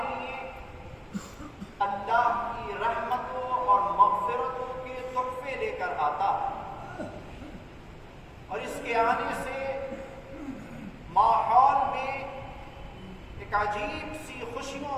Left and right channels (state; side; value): identical; both; correlation 1.00